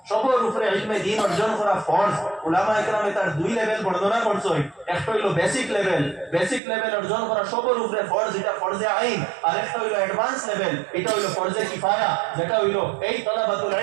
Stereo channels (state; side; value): drops out; left; at 6.6 s